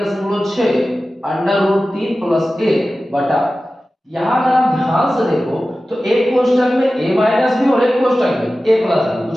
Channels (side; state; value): both; normal; correlation 0.95